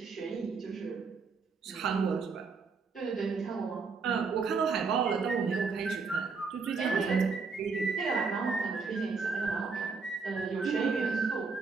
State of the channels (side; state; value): left; quieter; 4.8 dB